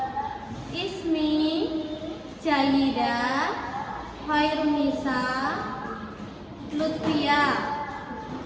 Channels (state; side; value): identical; both; correlation 1.00